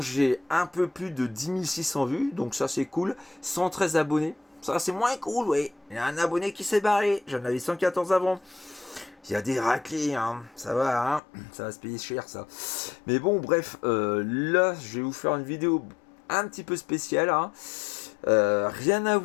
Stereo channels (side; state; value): right; drops out; at 11.2 s